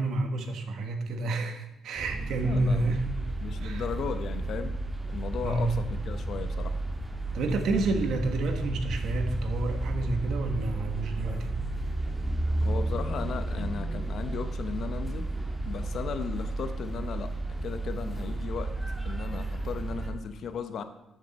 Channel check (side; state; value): both; normal; correlation 0.82